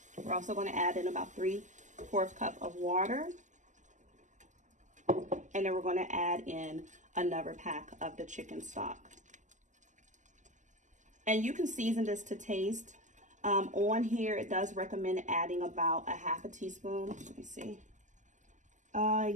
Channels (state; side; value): late; left; 0.36 ms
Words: We're also going to add in about 3/4 cup of water. And then we're going to add in another pack of the chicken stock. And you can season this to taste. On here, it does recommend adding about 1/2 teaspoon. Let me see.